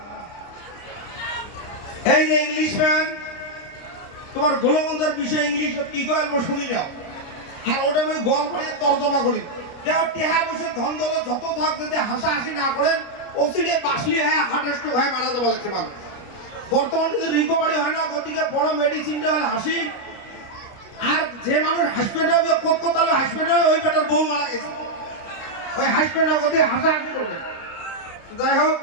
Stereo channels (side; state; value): right; late; 29 ms